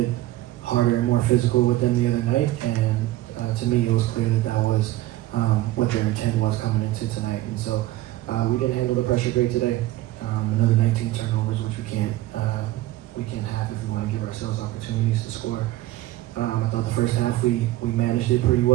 harder and more physical with them the other night, and to me it was clear that was what their intent was coming into tonight. And so we didn't handle the pressure great today. Another 19 turnovers, which we can't have if we want to give ourselves opportunities to score. I thought the first half we managed it pretty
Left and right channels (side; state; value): left; quieter; 16.2 dB